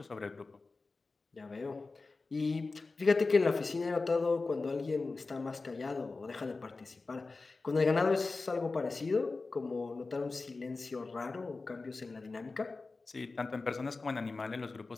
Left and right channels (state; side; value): quieter; right; 3.8 dB